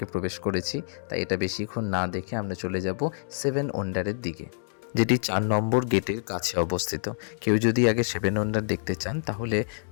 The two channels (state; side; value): silent; right; digital silence